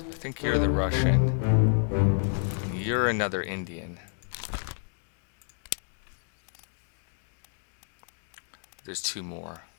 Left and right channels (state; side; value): silent; right; 58 dB below the other